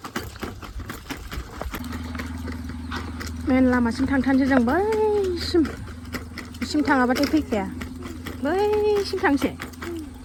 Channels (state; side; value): identical; both; correlation 1.00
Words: मेन लामासिम थांथारनोसै जों बैसिम थाङाबाथाय फैखाया बैसिम थांसै